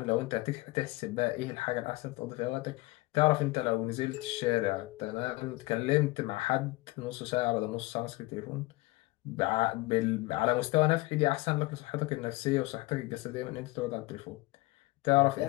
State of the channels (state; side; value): quieter; right; 21.2 dB